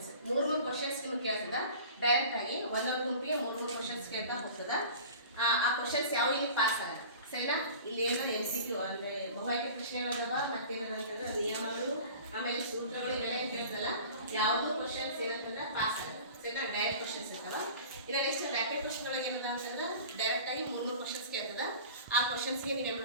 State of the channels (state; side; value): inverted; both; correlation -0.41